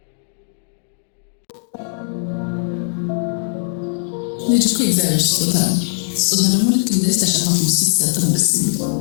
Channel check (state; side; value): silent; right; digital silence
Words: ልጅ እኮ እግዚአብሔር ስጦታ ነው። ስጦታ ደግሞ ልክ እንደዚህ ተሸፋፍኖ ሲሰጥ ነው ደስ የሚለው።